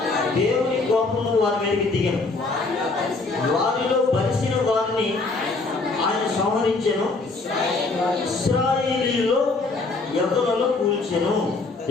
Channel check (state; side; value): quieter; right; 3.6 dB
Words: దేవుని కోపము వారి మీదకి దిగను. వారిలో బలిసిన వారిని ఆయన సంహరించెను, ఇశ్రాయేలీయుల్లో యవ్వనులను కూల్చెను.